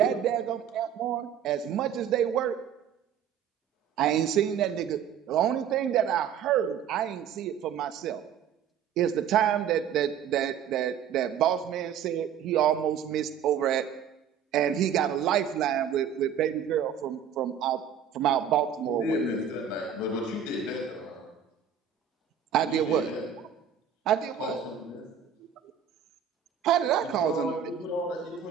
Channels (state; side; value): quieter; left; 8.4 dB